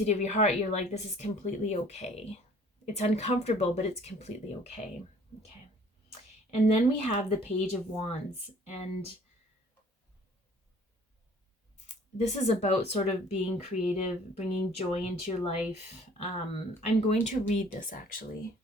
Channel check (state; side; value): normal; both; correlation 0.54